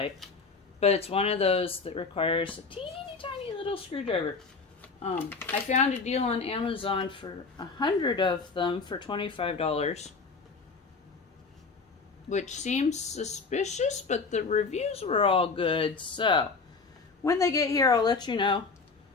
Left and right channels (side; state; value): right; quieter; 4.5 dB